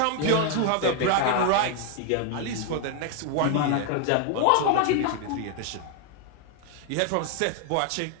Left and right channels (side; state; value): both; different; correlation 0.00